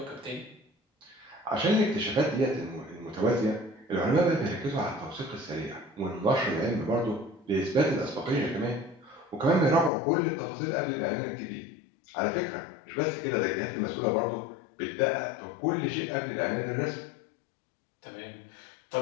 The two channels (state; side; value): drops out; right; at 9.9 s